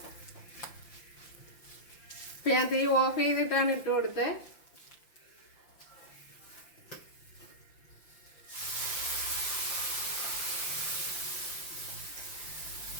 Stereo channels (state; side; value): late; right; 5.8 ms